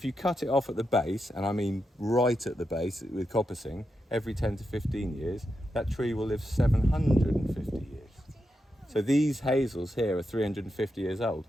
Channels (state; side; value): normal; both; correlation 0.86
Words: you cut it off at the base, and I mean right at the base with coppicing, every 10 to 15 years, that tree will live 750 years. So these hazels here are 350 years old.